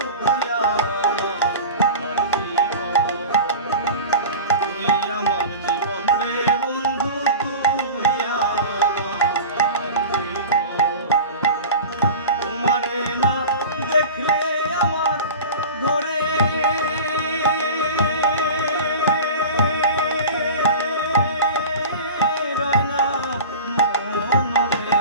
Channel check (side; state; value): both; inverted; correlation -0.33